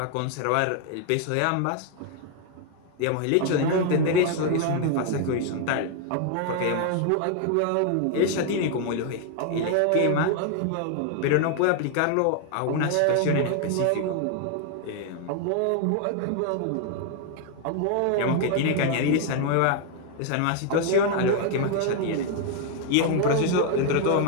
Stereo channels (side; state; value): both; different; correlation 0.00